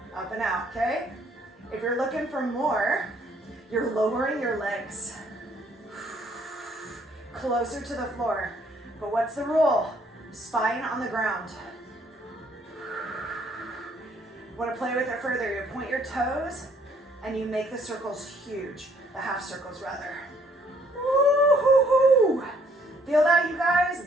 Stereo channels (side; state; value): both; normal; correlation 0.64